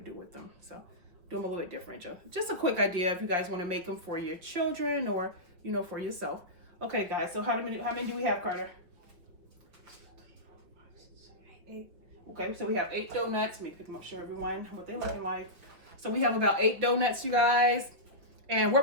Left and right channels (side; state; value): left; late; 5.7 ms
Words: with them. So do them a little bit different. Just a quick idea if you guys want to make them for your children or, you know, for yourself. Okay, guys, so how many do we have, Carter? 8. Okay, so we have 8 donuts. Let me pick them up, show everyone what they're looking like. So we have about 8 donuts, you guys. And